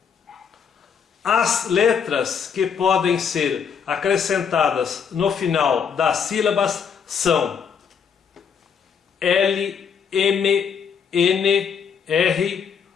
As letras que podem ser acrescentadas no final das sílabas são L, M, N, R,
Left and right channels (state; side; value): quieter; right; 6.9 dB